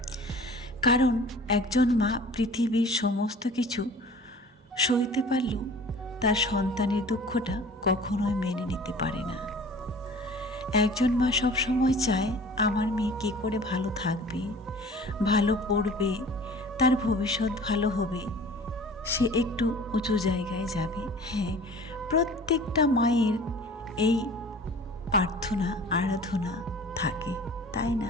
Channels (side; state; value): both; normal; correlation 0.45